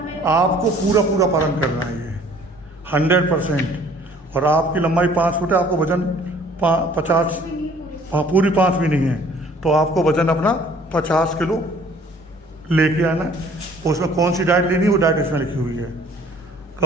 पूरा पालन करना है ये 100%। और आपकी लंबाई 5 फुट है, आपको वजन 50, पूरी 5 भी नहीं है, तो आपको वजन अपना 50 किलो लेके आना है। उसमें कौन सी डाइट लेनी है वो डाइट इसमें लिखी हुई है।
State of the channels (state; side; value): normal; both; correlation 0.55